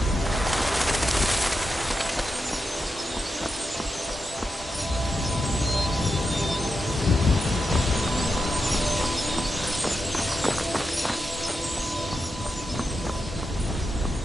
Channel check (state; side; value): normal; both; correlation 0.87